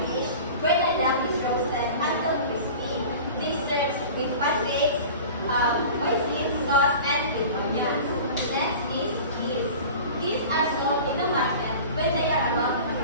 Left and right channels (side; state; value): both; inverted; correlation -0.38